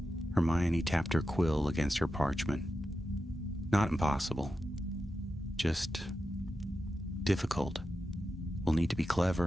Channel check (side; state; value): both; normal; correlation 0.90